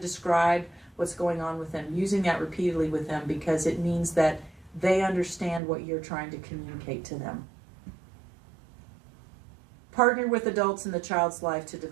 what's going on with them, using that repeatedly with them, because it means that they understand what you're trying to communicate to them. Partner with adults in the child's life to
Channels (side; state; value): left; drops out; at 5.6 s